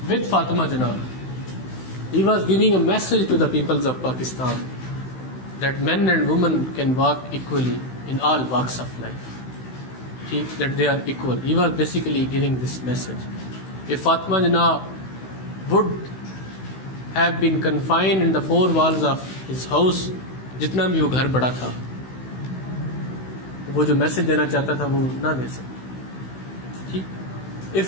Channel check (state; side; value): late; right; 16 ms